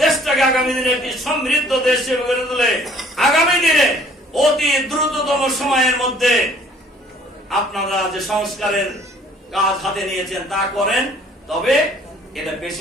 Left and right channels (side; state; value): both; normal; correlation 0.57